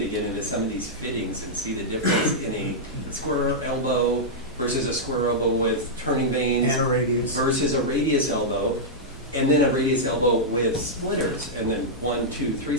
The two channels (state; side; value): normal; both; correlation -0.08